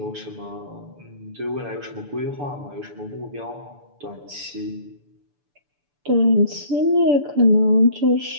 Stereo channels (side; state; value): left; late; 6.9 ms